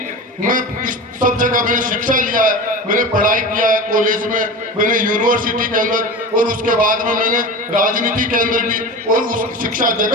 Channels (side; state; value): both; normal; correlation 0.30